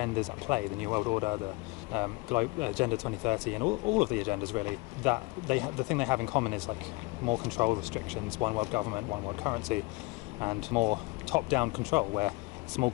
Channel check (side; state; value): right; quieter; 25.3 dB